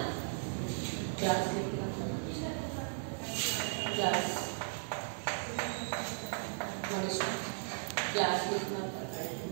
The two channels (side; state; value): left; silent; digital silence